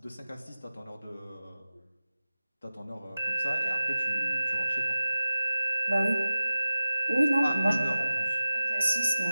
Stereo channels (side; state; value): both; inverted; correlation -0.93